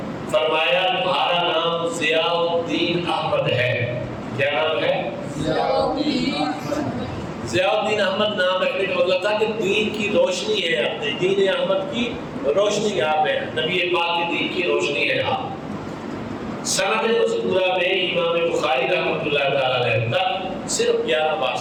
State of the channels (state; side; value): identical; both; correlation 1.00